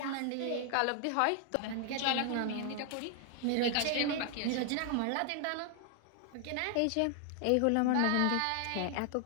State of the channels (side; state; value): both; different; correlation 0.00